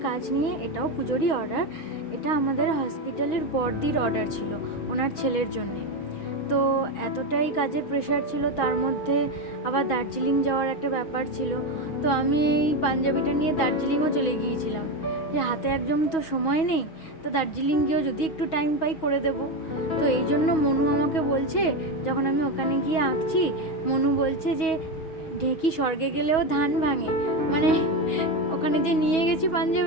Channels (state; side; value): late; right; 6.2 ms